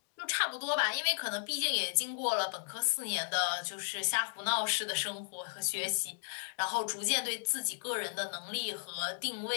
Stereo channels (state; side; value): silent; right; digital silence